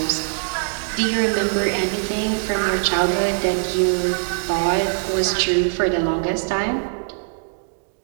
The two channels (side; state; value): left; silent; 64 dB below the other